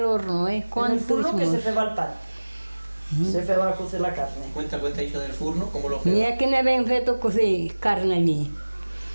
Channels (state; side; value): inverted; both; correlation -1.00